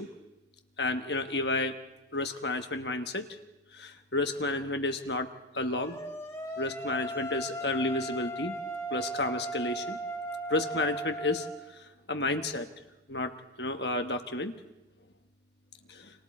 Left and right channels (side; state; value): both; normal; correlation 0.13